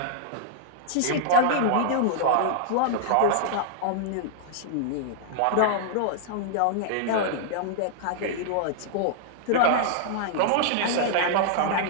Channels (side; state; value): both; different; correlation -0.01